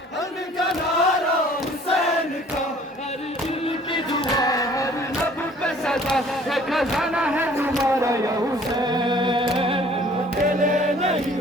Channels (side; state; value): both; normal; correlation 0.54